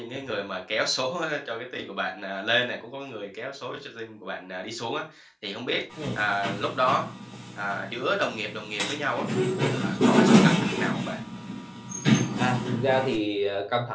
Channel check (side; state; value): both; identical; correlation 1.00